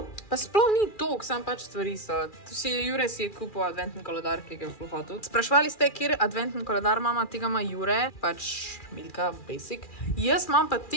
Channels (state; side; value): late; right; 2.4 ms